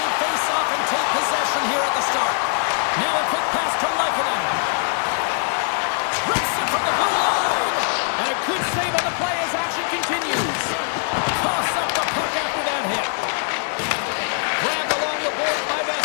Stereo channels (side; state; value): right; silent; 58 dB below the other